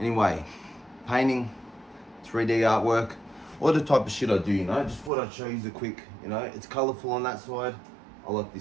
painting, 3D artwork, all the type of shit I do, Just thought I'd show you the quick, It's colourful on that side. I like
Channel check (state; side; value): drops out; left; at 5.1 s